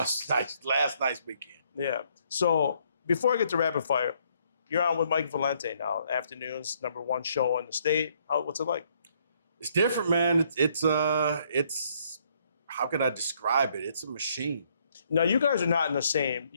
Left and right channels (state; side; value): inverted; both; correlation -0.68